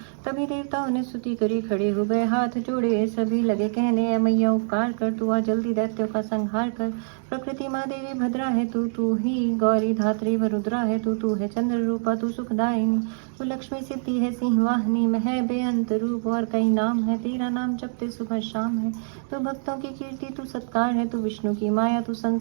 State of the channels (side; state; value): left; silent; digital silence